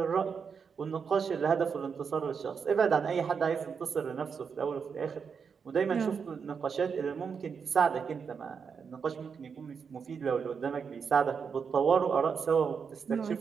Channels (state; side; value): quieter; left; 6.2 dB